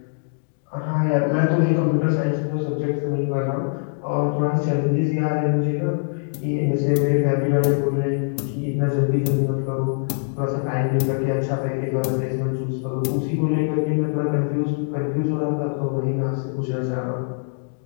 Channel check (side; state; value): right; silent; digital silence